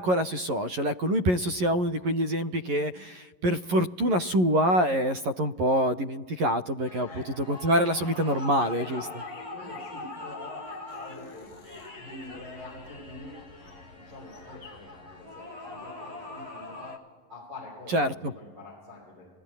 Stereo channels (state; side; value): late; left; 11 ms